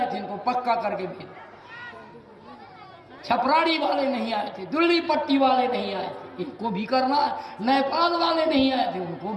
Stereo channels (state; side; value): identical; both; correlation 1.00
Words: थे, इनको पक्का करके भेज। छपराड़ी वाले नहीं आए थे, दिल्ली पट्टी वाले नहीं आए थे, इनको भी करना है। नेपाल वाले नहीं आए थे, उनको